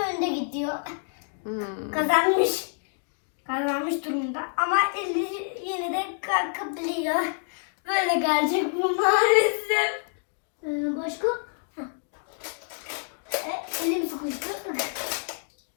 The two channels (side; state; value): right; silent; 60 dB below the other